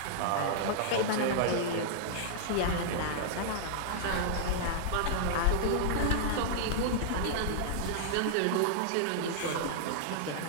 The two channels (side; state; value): both; different; correlation -0.02